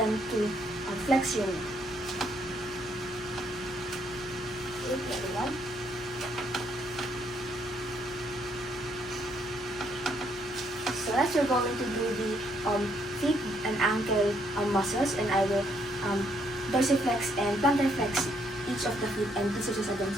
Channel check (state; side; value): normal; both; correlation 0.71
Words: to flex your knee. The other one. So next we're going to do the feet and ankle muscles, and I will dorsiflex and plantar flex each of the feet and positions